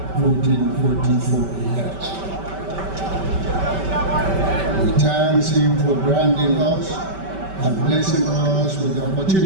1444 elect. We thank Him for granting us and blessing us with the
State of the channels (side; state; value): left; late; 5.2 ms